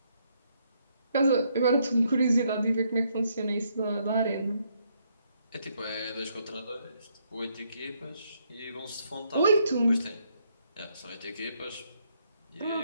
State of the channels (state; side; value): inverted; both; correlation -0.74